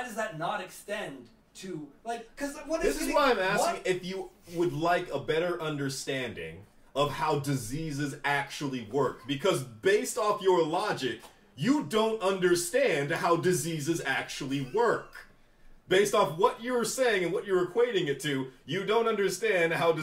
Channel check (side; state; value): both; identical; correlation 1.00